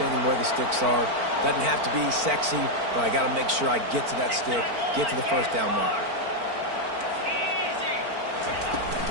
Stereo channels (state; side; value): late; left; 4.4 ms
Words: where the sticks are. Doesn't have to be sexy, but I got to make sure I get to that stick, get to the first down marker.